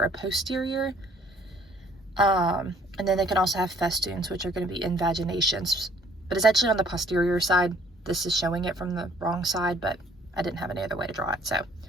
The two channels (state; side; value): normal; both; correlation 0.60